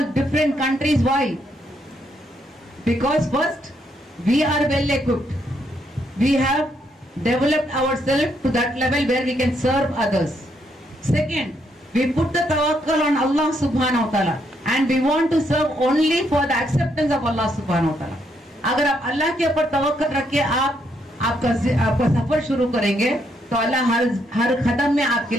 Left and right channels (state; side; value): normal; both; correlation 0.75